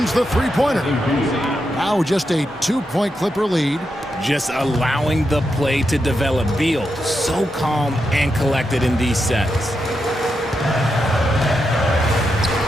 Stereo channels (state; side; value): normal; both; correlation 0.85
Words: the three-pointer. Now just a 2-point Clipper lead. Just allowing the play to develop. Beal, so calm and collected in these sets.